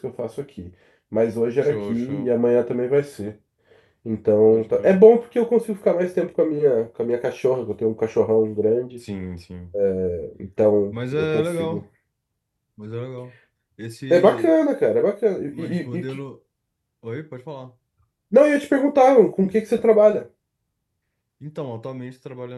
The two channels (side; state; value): both; identical; correlation 1.00